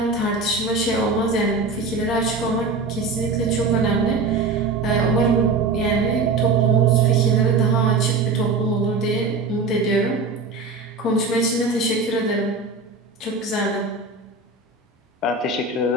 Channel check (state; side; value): quieter; left; 3.9 dB